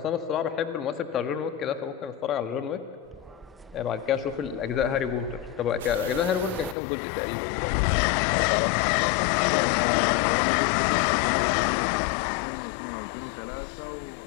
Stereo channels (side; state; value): right; drops out; at 6.8 s